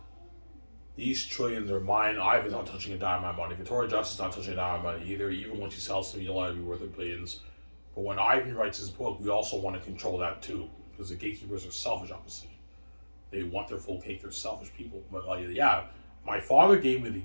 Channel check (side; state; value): both; inverted; correlation -1.00